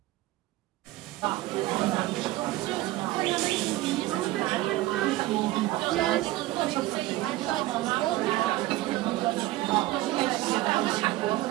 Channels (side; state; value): left; quieter; 17.4 dB